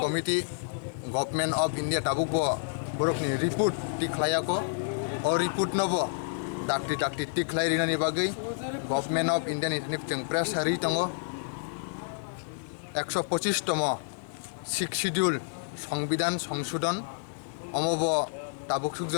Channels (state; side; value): silent; right; 58 dB below the other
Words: committee government of India ताबुकबो बरकनि रिपोर्ट टिख्लायाको अ रिपोर्ट नबो डाक्टी टिख्लायरिनानि बागै गभर्नमेन्ट अफ इन्डियानि जों प्रेस हारि दङ 125तम सिक्स शिड्यूल संविधान संशोधन अमब ताबुक